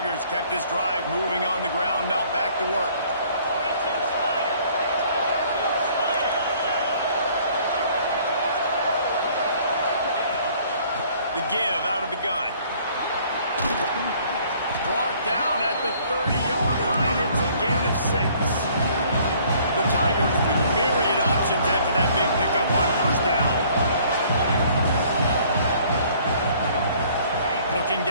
kept this drive moving on the ground. Now back to work. The give out of the gun. Brought down at the 30-yard line. It's a gain of 6. The Tigers with myriad options after that big pickup on first down. Looking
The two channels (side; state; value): both; inverted; correlation -0.58